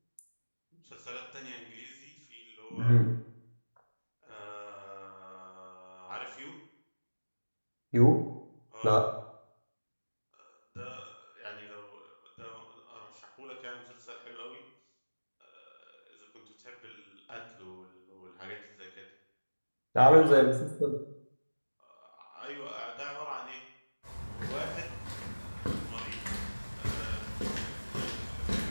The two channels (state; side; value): inverted; both; correlation -1.00